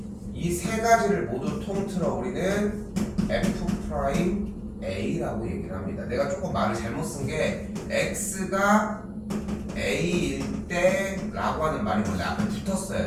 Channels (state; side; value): identical; both; correlation 1.00